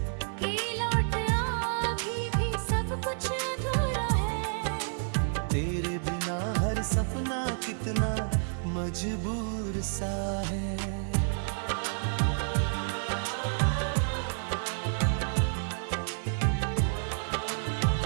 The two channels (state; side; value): silent; left; 58 dB below the other